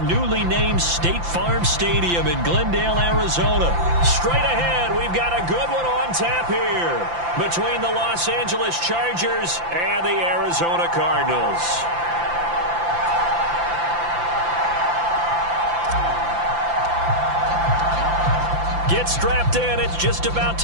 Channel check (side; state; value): left; late; 5.8 ms